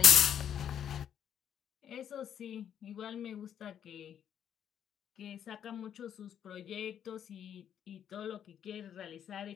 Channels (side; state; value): right; quieter; 9.3 dB